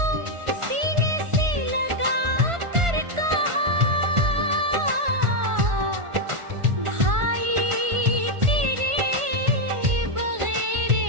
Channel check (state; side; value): late; left; 1.4 ms